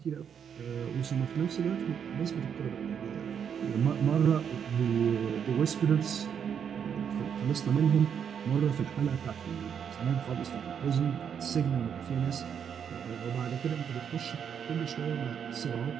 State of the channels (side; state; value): left; quieter; 7.8 dB